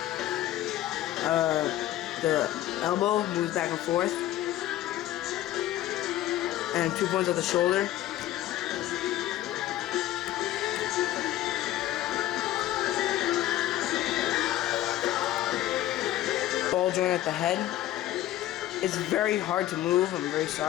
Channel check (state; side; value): quieter; right; 13.9 dB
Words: The elbow moves back and forth. And 2 points at the shoulder. Ball joint at the head. It's very hard to move, I'm very